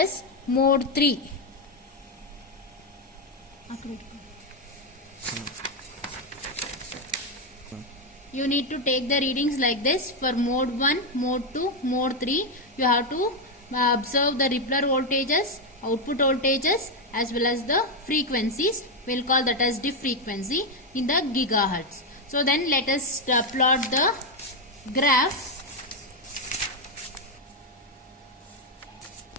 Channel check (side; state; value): both; normal; correlation 0.04